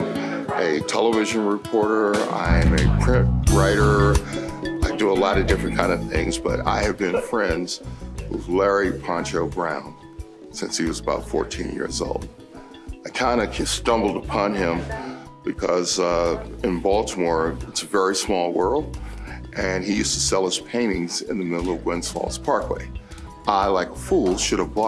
a television reporter. I am a print writer. I do a lot of different kind of things, but I have been friends with Larry Poncho Brown since he was about 14 years old. I kind of stumbled upon him because in Baltimore, it's a very small world, and he used to sell his paintings in the middle of Gwynns Falls Parkway. I, like a fool, should have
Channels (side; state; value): both; identical; correlation 1.00